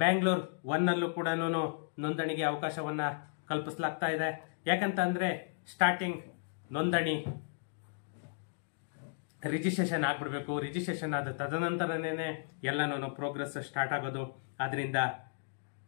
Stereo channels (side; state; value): right; silent; digital silence